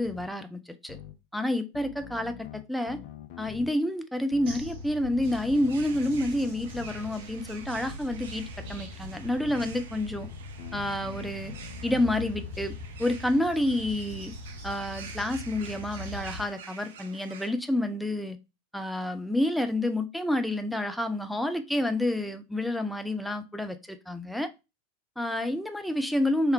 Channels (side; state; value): both; normal; correlation 0.84